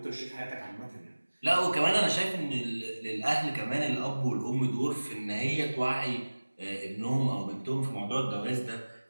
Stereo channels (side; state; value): both; inverted; correlation -1.00